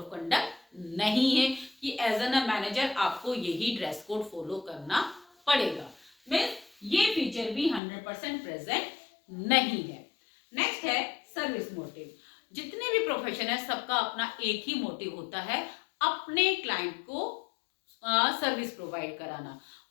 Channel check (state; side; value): drops out; right; at 7.8 s